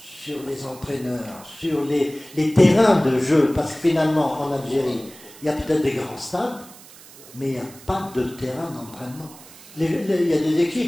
les entraîneurs, sur les terrains de jeu. Parce que finalement, en Algérie, il y a peut-être des grands stades, mais il n'y a pas de terrain d'entraînement. Il y a des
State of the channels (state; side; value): noise; right; hiss, 20 dB below the sound